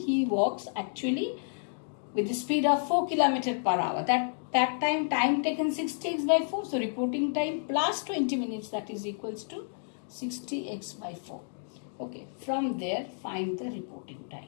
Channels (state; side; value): silent; right; digital silence